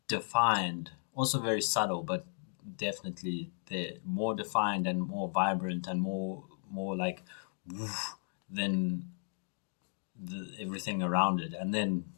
defined, also very subtle, but definitely there, more defined and more vibrant and more like woof, than everything around it. And then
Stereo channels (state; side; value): silent; right; digital silence